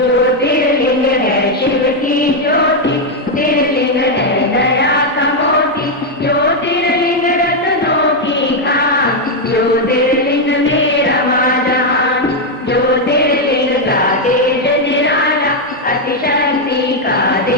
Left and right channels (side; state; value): both; normal; correlation 0.01